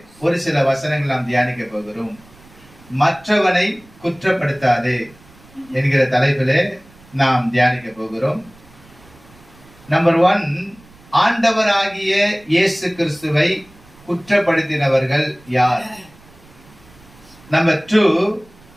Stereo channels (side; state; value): right; noise; rumble, 26 dB below the sound